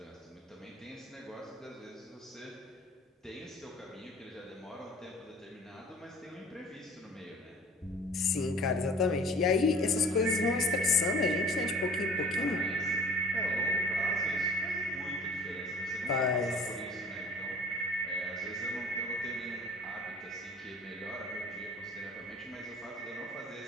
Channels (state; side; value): normal; both; correlation 0.48